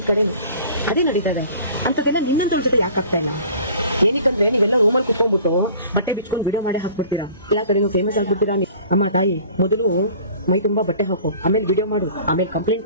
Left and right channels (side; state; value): both; inverted; correlation -0.47